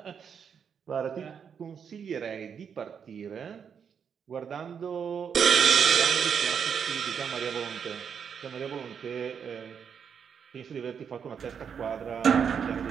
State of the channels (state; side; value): quieter; left; 7.2 dB